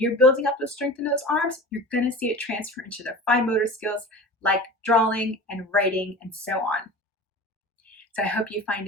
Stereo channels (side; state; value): both; normal; correlation 0.35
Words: building up the strength in those arms, you're going to see it transfer into their fine motor skills like drawing and writing and so on. So I hope you find